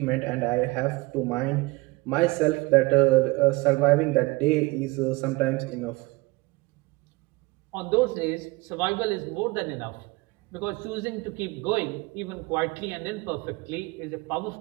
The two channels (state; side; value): quieter; left; 23.2 dB